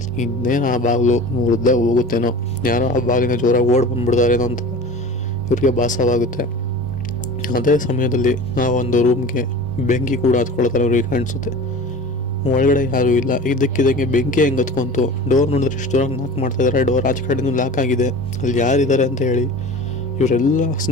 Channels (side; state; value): both; normal; correlation 0.37